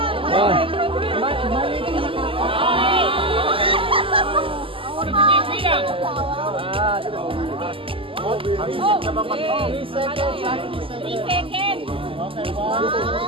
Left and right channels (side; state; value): left; late; 0.26 ms